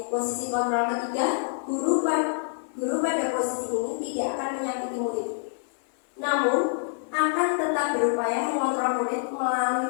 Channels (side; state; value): right; silent; 58 dB below the other